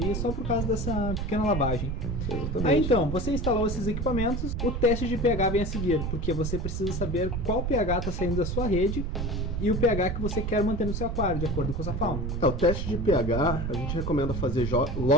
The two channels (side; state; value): right; noise; rumble, 2 dB below the sound